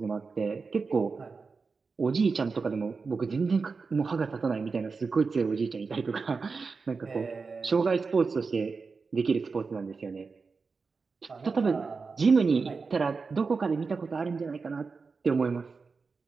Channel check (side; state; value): left; quieter; 4.7 dB